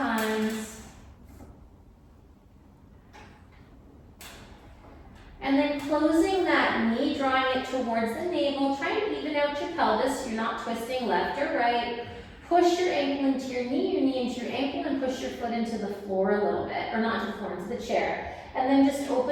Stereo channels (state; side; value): identical; both; correlation 1.00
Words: And then closing that knee, drawing it towards the navel, try and even out your pelvis so you're not twisting left or right. Push your ankle into your knee into your ankle, and push your foot into the floor a little bit, or not to the floor, into the chair. And then just